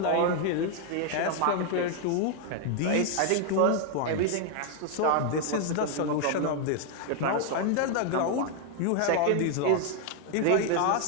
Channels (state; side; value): different; both; correlation 0.00